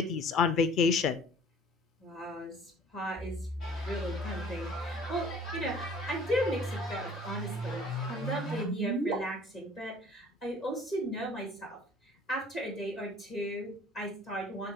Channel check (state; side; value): normal; both; correlation 0.52